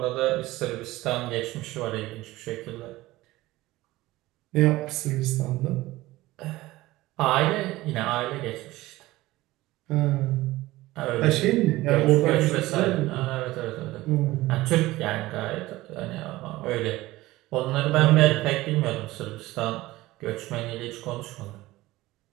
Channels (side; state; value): left; quieter; 18.1 dB